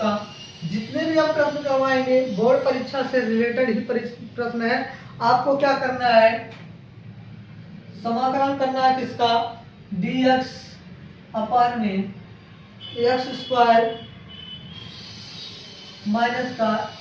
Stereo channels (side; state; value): both; identical; correlation 1.00